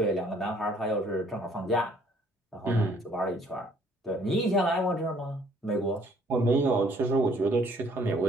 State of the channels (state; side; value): normal; both; correlation 0.61